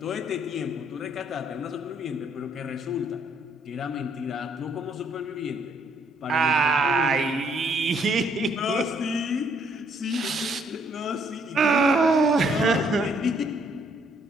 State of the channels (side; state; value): both; normal; correlation 0.68